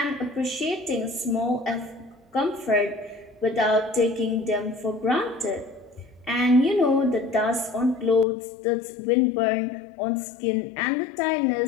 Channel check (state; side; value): drops out; right; at 8.2 s